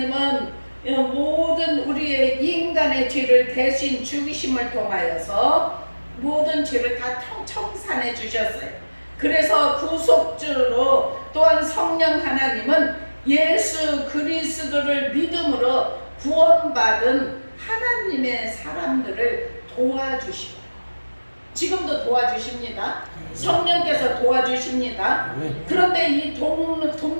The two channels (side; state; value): both; inverted; correlation -1.00